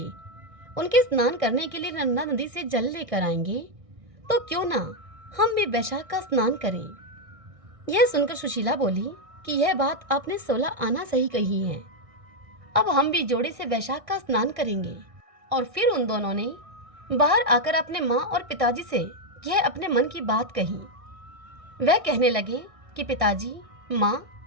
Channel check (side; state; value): left; late; 1.6 ms